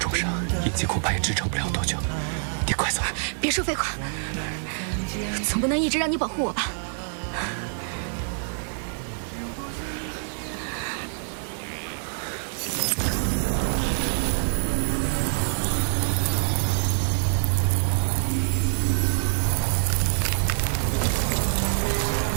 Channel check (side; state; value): left; silent; digital silence